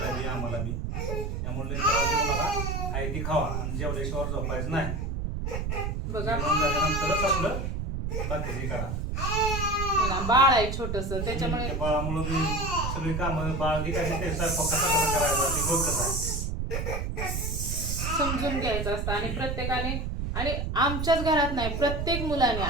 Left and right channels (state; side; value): noise; right; rumble, 2 dB below the sound